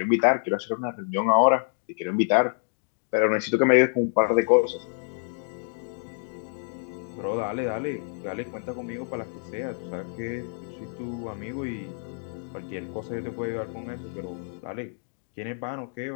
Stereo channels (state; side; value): silent; right; digital silence